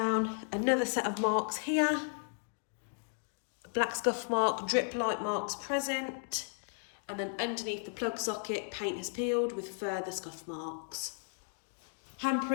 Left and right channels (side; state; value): right; silent; 55 dB below the other